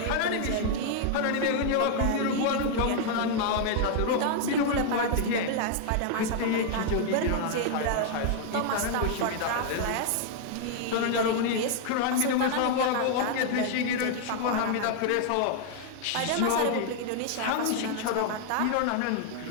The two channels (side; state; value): both; different; correlation 0.00